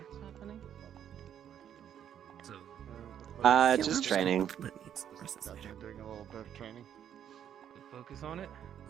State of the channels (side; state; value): left; quieter; 9.5 dB